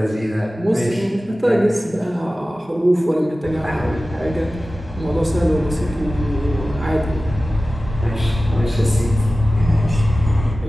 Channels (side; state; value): both; normal; correlation 0.96